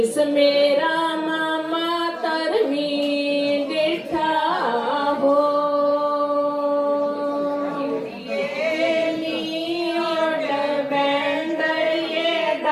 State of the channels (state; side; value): identical; both; correlation 1.00